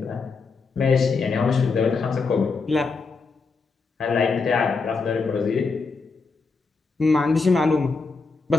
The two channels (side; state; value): right; quieter; 4.4 dB